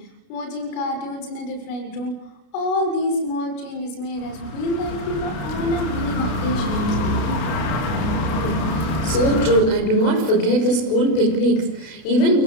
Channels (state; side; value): late; right; 32 ms